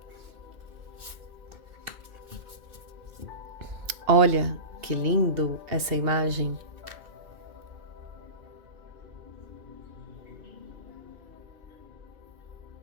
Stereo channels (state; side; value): late; left; 2.9 ms